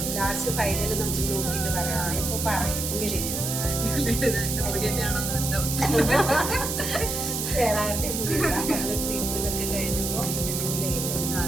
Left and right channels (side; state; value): right; noise; hiss, 2 dB below the sound